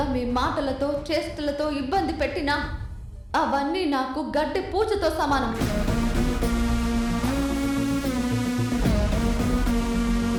మీ మాటలతో చేష్టలతో ఇబ్బంది పెట్టినా అవన్నీ నాకు గడ్డి పూజతో సమానం.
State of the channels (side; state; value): both; identical; correlation 1.00